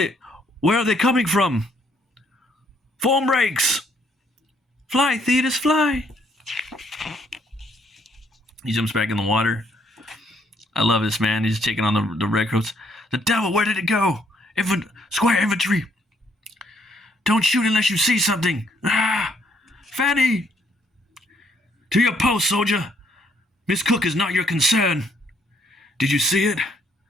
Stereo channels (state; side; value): normal; both; correlation 0.69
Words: are they coming from? Foam breaks. Fly, Thetis, fly. He jumps back in the water. I love this, man. He's taking on the redcoats. The devil, where did it go? Squire infantry. Don't shoot unless you see something. Fanny. To your post, soldier. Miss Cook is not your concern. Did you see it?